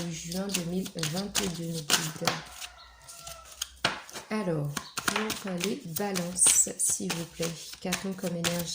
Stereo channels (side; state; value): both; identical; correlation 1.00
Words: juin 2022. Alors, pour les balances, s'il vous plaît, qu'a-t-on comme